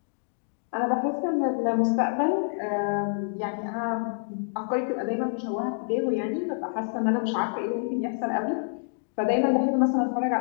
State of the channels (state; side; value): silent; right; digital silence